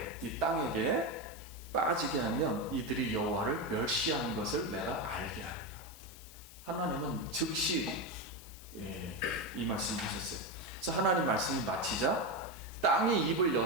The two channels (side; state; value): left; noise; hiss, 18 dB below the sound